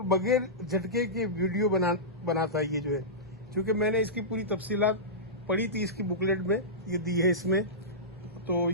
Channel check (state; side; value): normal; both; correlation -0.16